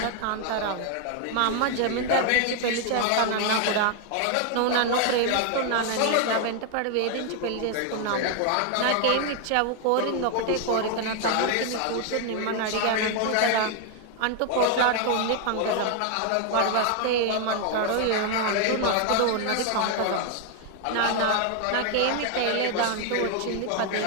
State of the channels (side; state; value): both; different; correlation 0.00